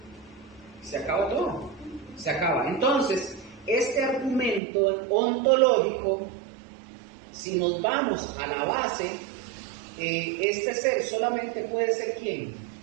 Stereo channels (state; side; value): drops out; left; at 4.6 s